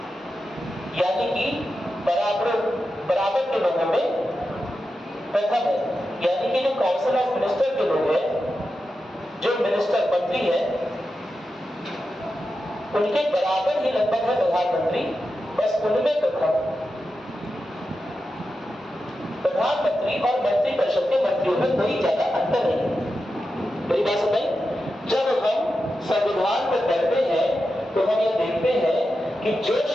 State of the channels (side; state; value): both; normal; correlation 0.90